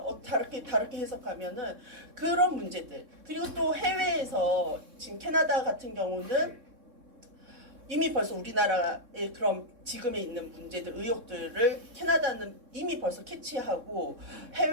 다르게 해석하면은 그런 문제들. 그리고 또 해외에서 지금 캐나다 같은 경우는 이미 벌써 우리나라의 그런 지금에 있는 문제들, 의혹들을 캐나다는 이미 벌써 캐치하고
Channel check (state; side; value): late; left; 3.6 ms